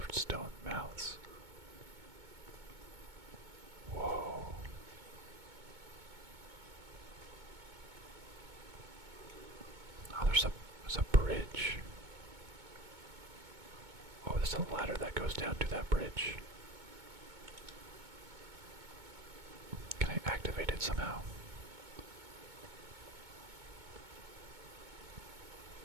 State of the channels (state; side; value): late; left; 2.2 ms